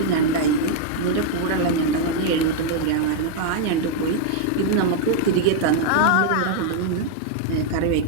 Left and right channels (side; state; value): both; different; correlation 0.00